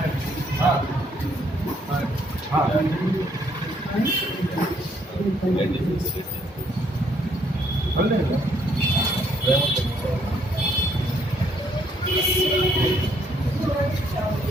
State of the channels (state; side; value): normal; both; correlation 0.69